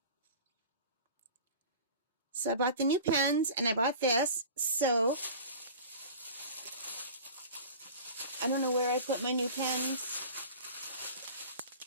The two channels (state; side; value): inverted; both; correlation -0.39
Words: So I bought the new pens and I bought this. So I don't know where I put my new pens.